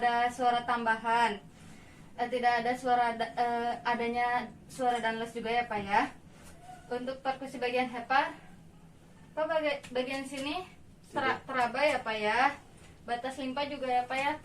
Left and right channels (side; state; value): both; identical; correlation 1.00